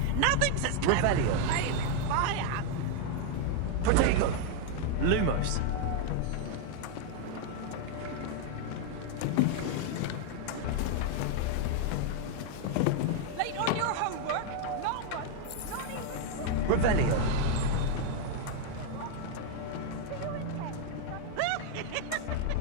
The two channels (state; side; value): different; both; correlation 0.00